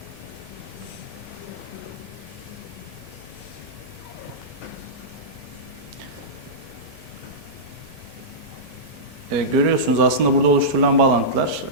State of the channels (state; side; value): normal; both; correlation -0.15